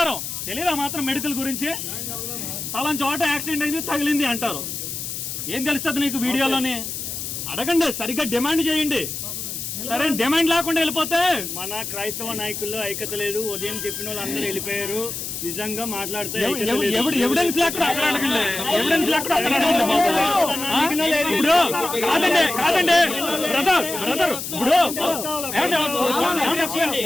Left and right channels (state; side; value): noise; left; hiss, 6 dB below the sound